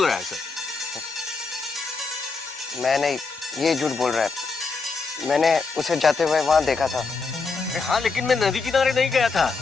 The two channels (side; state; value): right; quieter; 4.4 dB